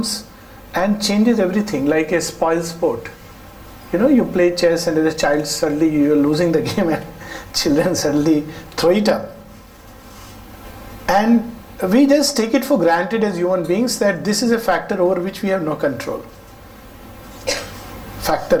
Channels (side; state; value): both; identical; correlation 1.00